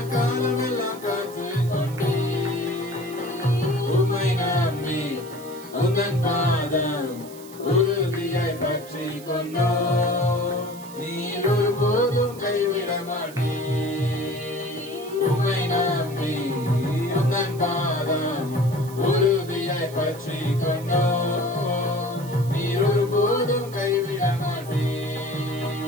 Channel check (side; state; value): right; noise; hiss, 19 dB below the sound